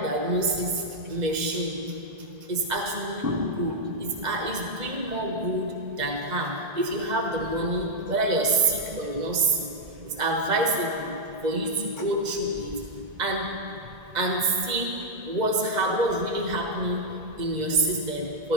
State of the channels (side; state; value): left; late; 2.0 ms